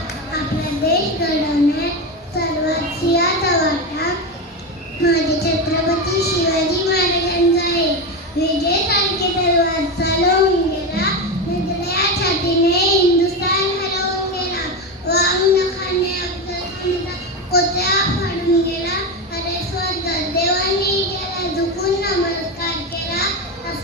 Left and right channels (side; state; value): both; normal; correlation 0.16